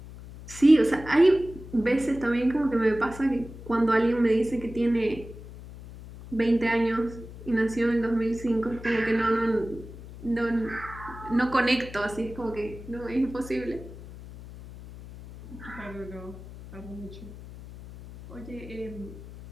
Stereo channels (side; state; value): left; noise; hum, 15 dB below the sound